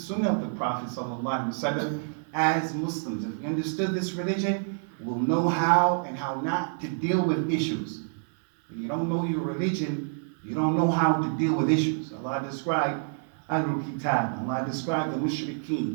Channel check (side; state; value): left; silent; digital silence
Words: of the Prophet ﷺ, as Muslims, if we understood this religion, we'll know how and how not to deal with issues. When you don't know your religion, you don't know how to deal with issues. Allah described Ahlul Kitab, Allah described the